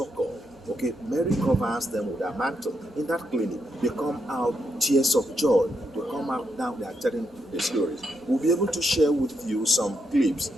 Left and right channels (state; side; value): normal; both; correlation 0.81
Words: okay, Mary covers them with her mantle. In that clinic, they come out tears of joy. They come out now, they are telling the stories. We'll be able to share with you some clips,